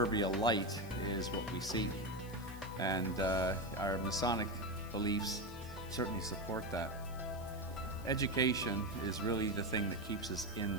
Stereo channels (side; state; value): left; noise; hiss, 19 dB below the sound